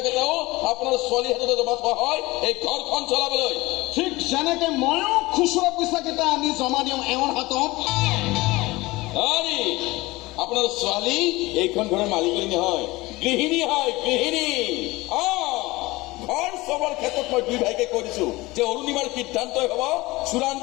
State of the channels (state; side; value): quieter; right; 20.9 dB